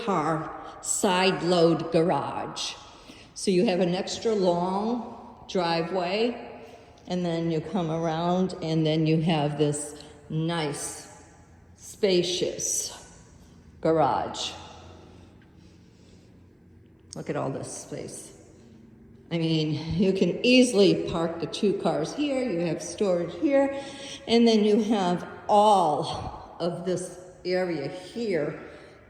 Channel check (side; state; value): both; identical; correlation 1.00